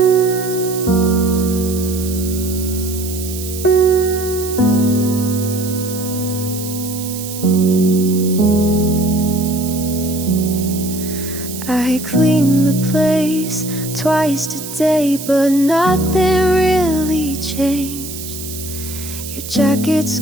I clean the place twice today, but nothing really changed. Your jacket's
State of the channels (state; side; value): noise; right; hiss, 10 dB below the sound